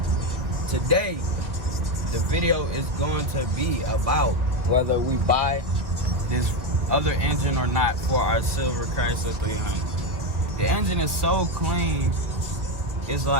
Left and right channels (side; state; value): left; late; 2.0 ms